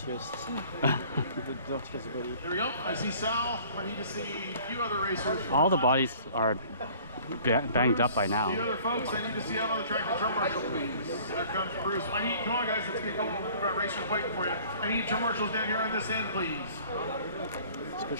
the dirtiest body. There we go. I see Sal. I need to see a few other racers. All the bodies are banged up by The now. other folks, I need to see out on the track the drum marshal, please. There comes Bruce. I need, come on guys, let's get going. We've got racers waiting for you. I need drum marshals down here on this end, please.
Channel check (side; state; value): both; inverted; correlation -0.51